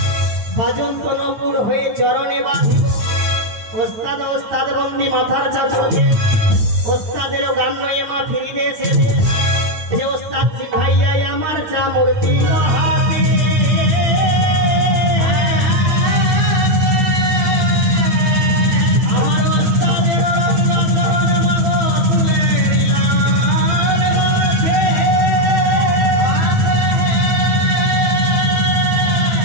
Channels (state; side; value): late; left; 9.6 ms